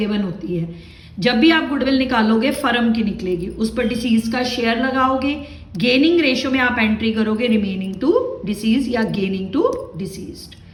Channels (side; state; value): both; identical; correlation 1.00